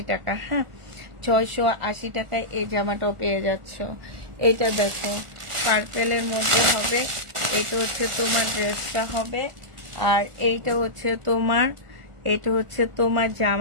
টাকা। হ্যাঁ, 680 টাকায় এই জামাটাও পেয়ে যাচ্ছ। এটা দেখো, পার্পেলের মধ্যে হবে, এটা হচ্ছে তোমার ড্রেসটা হবে, আর এইটা হচ্ছে তোমার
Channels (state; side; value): late; left; 1.4 ms